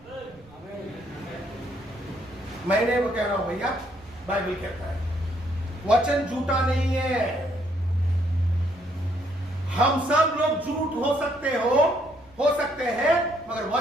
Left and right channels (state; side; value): noise; right; rumble, 26 dB below the sound